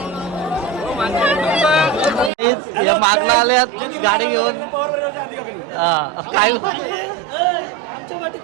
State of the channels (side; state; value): left; drops out; at 2.3 s